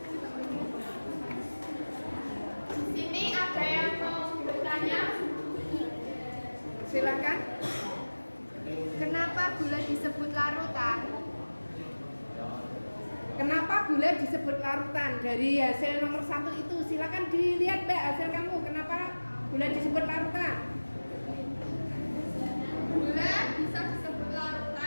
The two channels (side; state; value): both; inverted; correlation -1.00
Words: Di sini ada yang mau bertanya. Silakan. Kenapa gula disebut larutan? Kenapa gula disebut larutan? Dari hasil nomor 1 itu, silakan dilihat Mbak hasil kamu. Kenapa gula disebut larutan? Gula bisa disebut